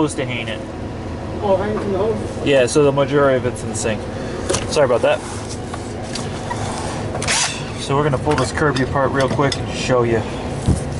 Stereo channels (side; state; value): both; identical; correlation 1.00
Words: to hang it. Oh, hang it from the hose? Yeah, so the majority of it's in sync. Sorry about that. So we're gonna pull this Kirby apart real quick and show you